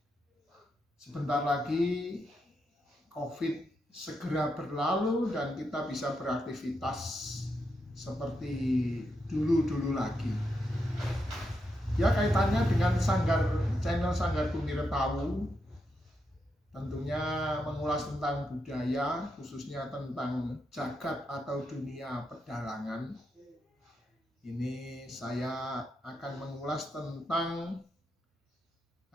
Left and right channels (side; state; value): both; normal; correlation 0.83